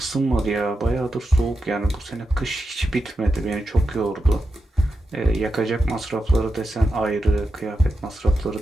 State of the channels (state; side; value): normal; both; correlation 0.88